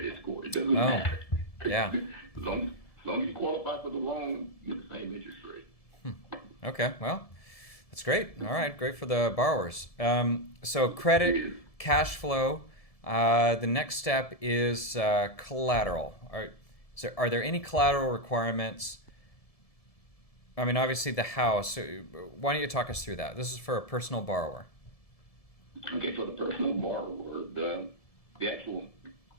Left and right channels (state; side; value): late; right; 1.7 ms